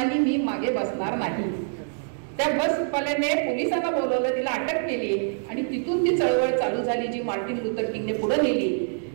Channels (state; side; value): silent; left; 61 dB below the other